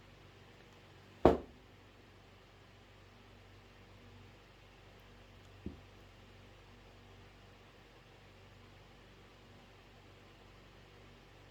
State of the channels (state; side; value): identical; both; correlation 1.00